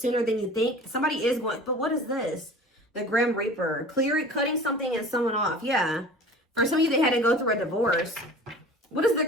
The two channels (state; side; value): normal; both; correlation 0.41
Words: than you think. Somebody is going, but what is this? The Grim Reaper, cutting something and someone off. Yeah, for some of you, they had to go through a divorce. What does the